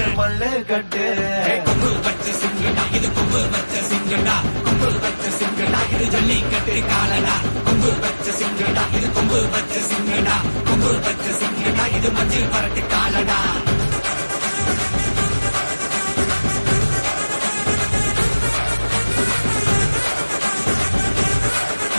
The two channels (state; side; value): inverted; both; correlation -1.00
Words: மல்லுக்கட்டு கொம்பு வச்ச சிங்கடா இது கொம்பு வச்ச சிங்கடா கொம்பு வச்ச சிங்கடா இது ஜல்லிக்கட்டு காலடா கொம்பு வச்ச சிங்கடா இது கொம்பு வச்ச சிங்கடா கொம்பு வச்ச சிங்கடா இது மஞ்சள் பரட்டு